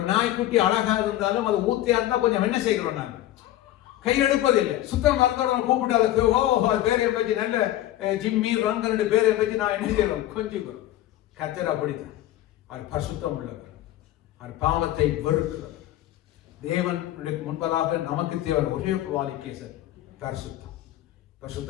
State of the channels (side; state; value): right; quieter; 14.0 dB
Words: நாய்க்குட்டி அழகா இருந்தாலும் அது ஊத்தியா இருந்தா கொஞ்சம் என்ன செய்கிறோம், நாங்க கை எடுப்பதில்லை. சுத்தம் மறந்தவங்க கூப்பிட்டு அதுக்கு பேரை வச்சு நல்ல ஜிம்மி ரங்கன் பேரை வச்சு நான் என்ன செய்யறோம், கொஞ்சம் கர்த்தர் அப்படித்தான். அவர் பரிசுத்தம் உள்ளவர், அவர் பாவத்தை வெறுக்கிறவர். தேவனுக்கு முன்பதாக நமக்கு தேவை ஒரே குவாலிஃபிகேஷன் பரிசுத்தம்.